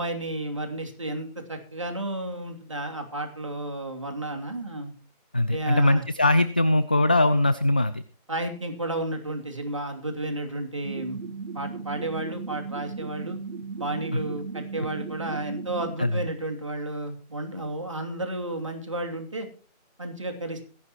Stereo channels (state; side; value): inverted; both; correlation -0.71